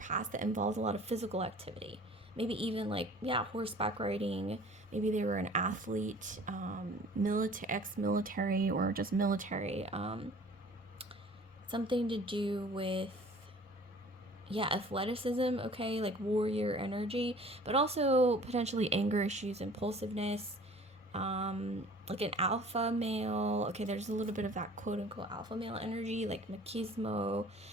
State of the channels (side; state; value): both; normal; correlation 0.48